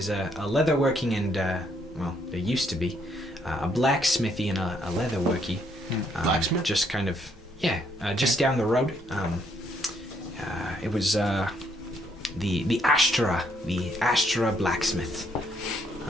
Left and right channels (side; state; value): both; normal; correlation 0.71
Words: a leatherworking and well, there used to be a blacksmithy and a leatherworky. Blacksmith? Just kind of just down the road. It was the Astra blacksmith.